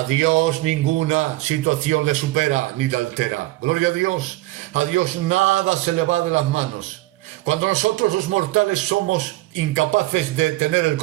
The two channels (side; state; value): left; quieter; 18.6 dB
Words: Dios ninguna situación le supera ni le altera. Gloria a Dios nada se le va de las manos. Cuando nosotros los mortales somos incapaces de tener el